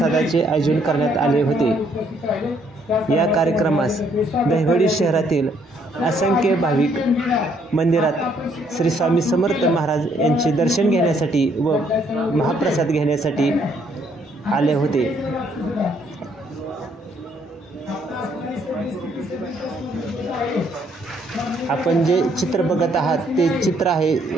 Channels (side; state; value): both; normal; correlation 0.68